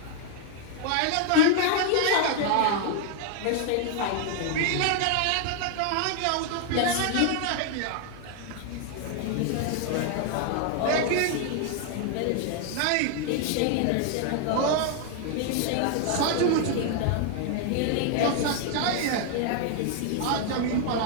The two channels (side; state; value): both; different; correlation 0.00